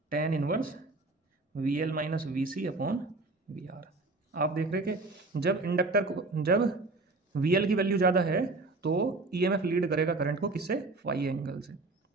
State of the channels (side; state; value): left; quieter; 3.2 dB